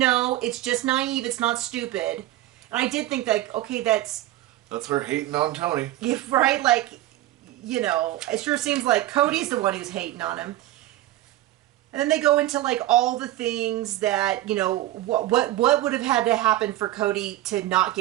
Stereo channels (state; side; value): quieter; left; 15.2 dB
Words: it's just naive. It's not stupid. And I did think that, okay, that's her hating on Tony. Yeah, right? Like, it sure seems like Cody's the one who's hating on him. And then they go into like all the things that, what would have had to happen for Cody to not